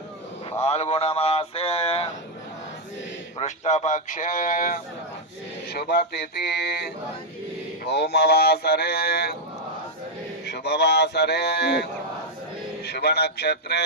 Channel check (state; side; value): normal; both; correlation -0.01